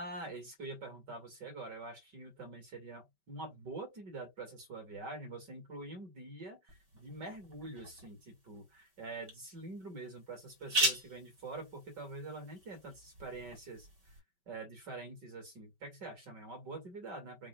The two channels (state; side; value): late; left; 5.2 ms